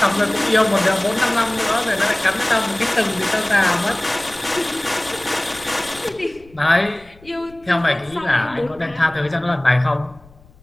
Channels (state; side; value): noise; left; rumble, 25 dB below the sound